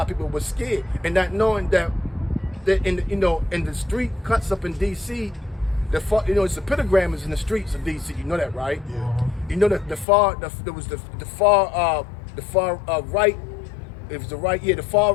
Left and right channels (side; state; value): right; drops out; at 10.1 s